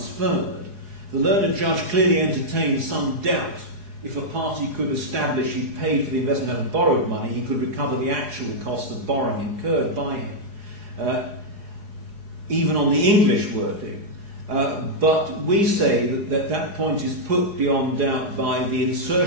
The learned judge clearly entertained some doubt if a party could establish he paid for the investment out of borrowed money, he could recover the actual cost of borrowing incurred by him, even on the English wording. But we say that point is put beyond doubt by the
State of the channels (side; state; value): left; late; 4.8 ms